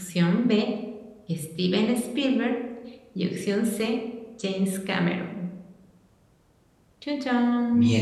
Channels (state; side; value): identical; both; correlation 1.00